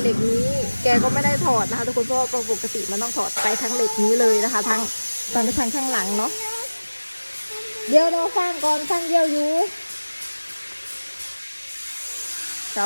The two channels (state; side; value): inverted; both; correlation -1.00